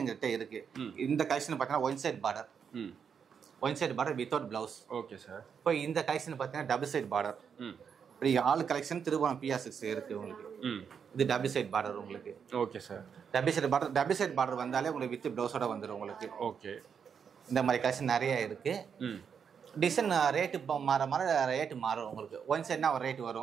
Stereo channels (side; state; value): left; quieter; 7.0 dB